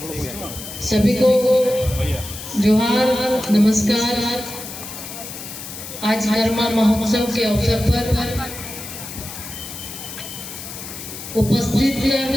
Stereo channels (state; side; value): noise; left; hiss, 11 dB below the sound